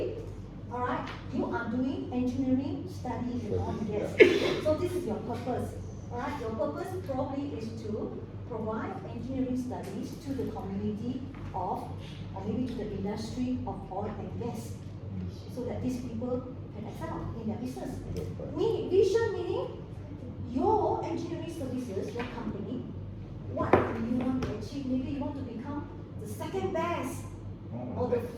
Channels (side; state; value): both; identical; correlation 1.00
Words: alright, you are doing engineering studies and all, yes. So this is your purpose. Alright, your purpose probably is to provide engineering studies to the community of, or maybe to the industry of oil and gas, so that these people can excel in their business. Vision meaning your engineering services, your company, what do you want to achieve? Maybe you want to become the second best or the